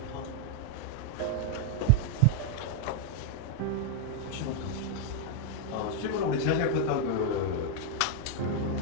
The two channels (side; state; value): both; different; correlation 0.01